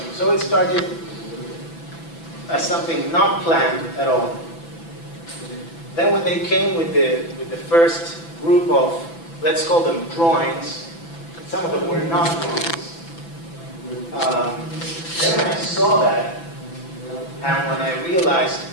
So it started as something not planned at all. Then when they came with the first group of, let's call them drawings, some of them were not drawings. Then when I saw that, and when I realized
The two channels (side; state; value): right; late; 6.0 ms